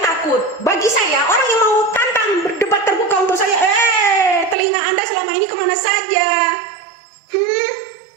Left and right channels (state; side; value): drops out; left; at 4.5 s